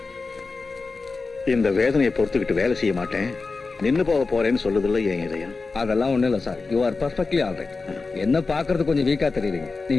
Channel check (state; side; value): quieter; right; 4.1 dB